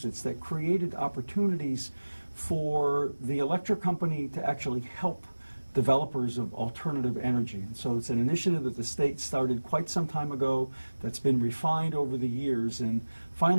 that created opportunities for the electric company to actually help developers of alternative energy. And so it's an initiative that the state started quite some time ago that's been refined over the years, and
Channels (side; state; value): both; inverted; correlation -1.00